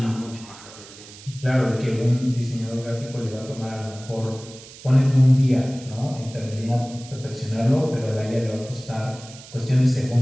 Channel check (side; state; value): right; noise; hiss, 18 dB below the sound